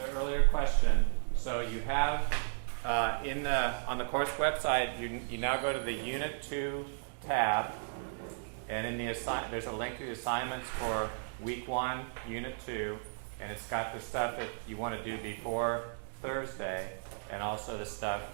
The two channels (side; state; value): left; silent; digital silence